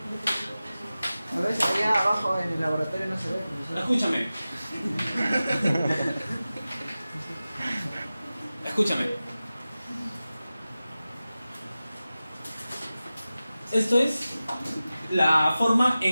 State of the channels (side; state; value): both; inverted; correlation -0.95